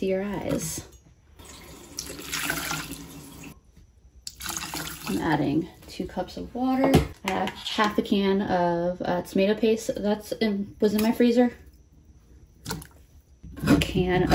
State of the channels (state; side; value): identical; both; correlation 1.00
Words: your eyes. I'm adding 2 cups of water. I have half a can of tomato paste was in my freezer. A can